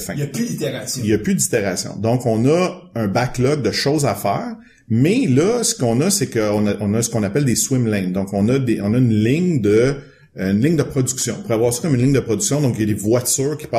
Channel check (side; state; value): both; identical; correlation 1.00